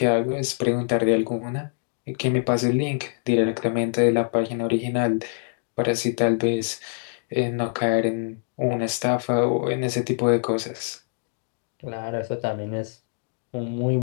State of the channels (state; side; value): silent; right; digital silence